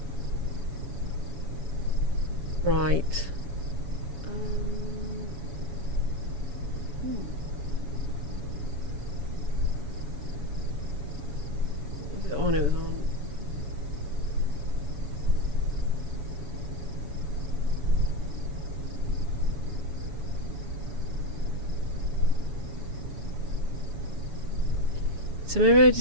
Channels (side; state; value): left; late; 7.1 ms